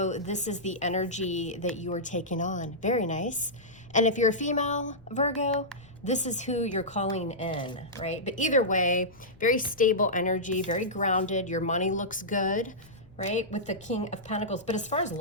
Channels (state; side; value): noise; left; rumble, 26 dB below the sound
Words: this is the energy that you are taking on. Very nice. And if you're a female Virgo, this is who you're calling in, right? But either way, very stable energy, very grounded. Your money looks good, right? With the King of Pentacles. But as far as